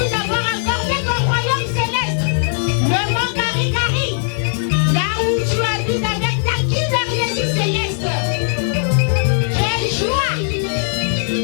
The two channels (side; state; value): right; silent; 67 dB below the other